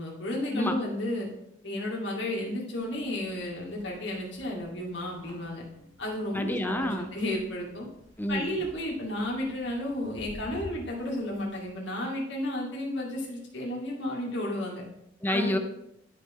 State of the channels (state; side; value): normal; both; correlation 0.58